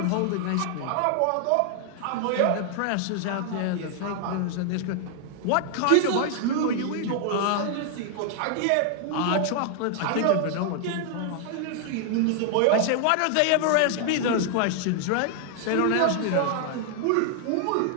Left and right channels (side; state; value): both; different; correlation 0.00